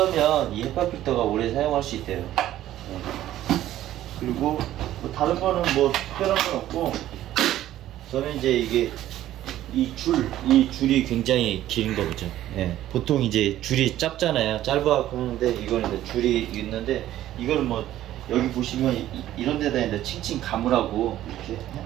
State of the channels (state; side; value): quieter; left; 13.3 dB